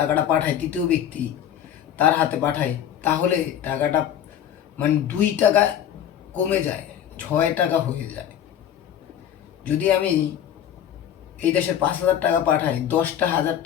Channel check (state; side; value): quieter; right; 10.0 dB